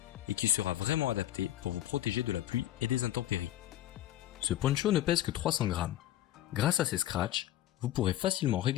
et qui sera vraiment adapté pour vous protéger de la pluie et des intempéries. Ce poncho ne pèse que 300 grammes. Grâce à ses scratchs, vous pourrez facilement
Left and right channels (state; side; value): quieter; right; 13.4 dB